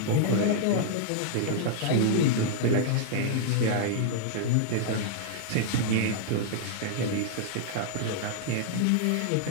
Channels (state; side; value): different; both; correlation -0.01